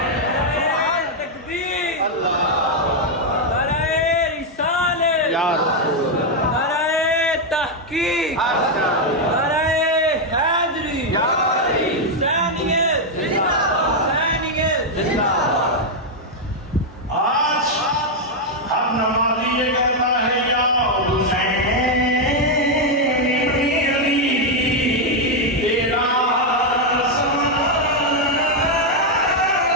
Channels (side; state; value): both; normal; correlation 0.00